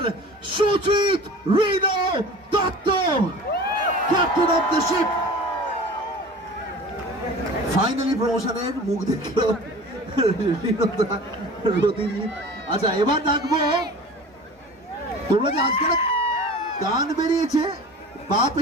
Sujit rhino Dutta, captain of the ship. Finally প্রমোশনের মুখ দেখলো রতিজিৎ। আচ্ছা, এবার ডাকবো, তোমরা যে আজকে গান বেরিয়েছে, বাপ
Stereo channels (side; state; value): both; normal; correlation 0.39